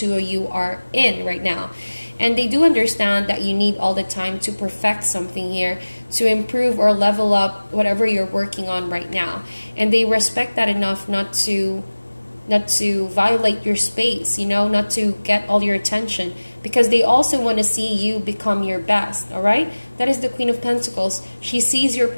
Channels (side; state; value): both; inverted; correlation -1.00